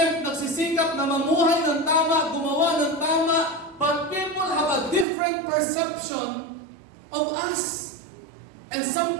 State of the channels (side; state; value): left; drops out; at 5.1 s